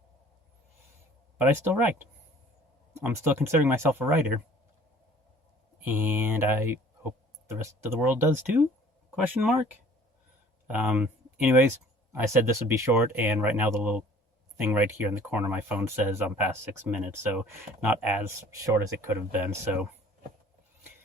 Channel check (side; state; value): both; normal; correlation 0.51